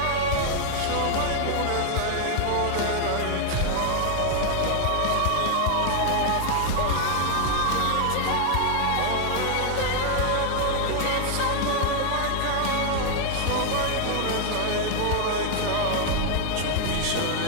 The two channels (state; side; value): different; both; correlation 0.00